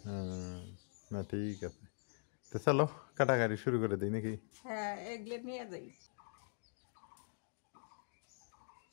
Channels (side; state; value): right; silent; digital silence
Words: না ঠিক আছে, তো চলো কাটাকাটি শুরু করে দিই নাকি? হ্যাঁ, এগুলো নিয়ে যাই।